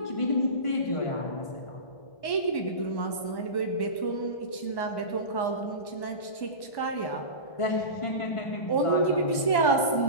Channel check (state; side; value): late; right; 1.1 ms